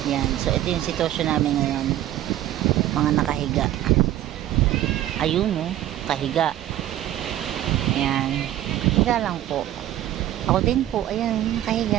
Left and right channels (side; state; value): left; quieter; 13.1 dB